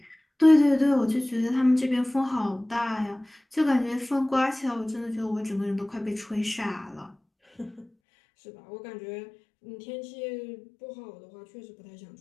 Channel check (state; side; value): drops out; right; at 7.9 s